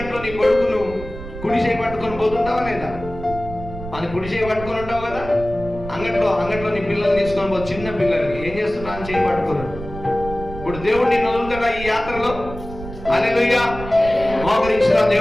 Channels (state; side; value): noise; right; rumble, 12 dB below the sound